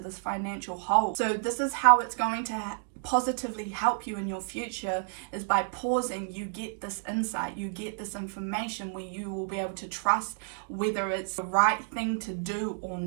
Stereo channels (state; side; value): silent; left; digital silence